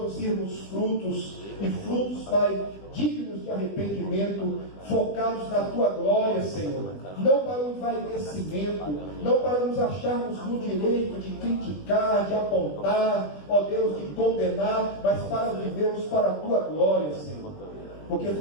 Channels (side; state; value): right; late; 20 ms